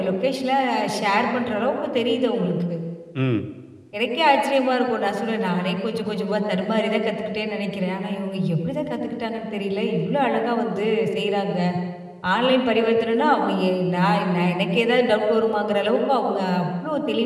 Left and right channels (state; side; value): identical; both; correlation 1.00